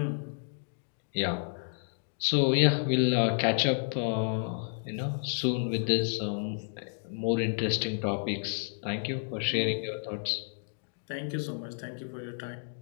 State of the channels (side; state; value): right; silent; digital silence